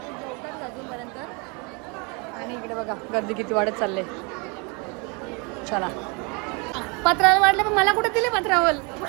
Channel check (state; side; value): quieter; left; 31.4 dB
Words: अजूनपर्यंत आणि इकडे बघा गर्दी किती वाढत चालले. चला पत्रावल वाढले पण मला कुठे दिले पत्रावल.